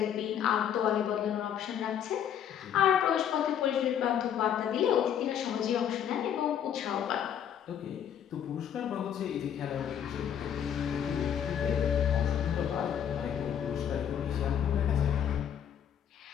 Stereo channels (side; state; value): right; quieter; 9.2 dB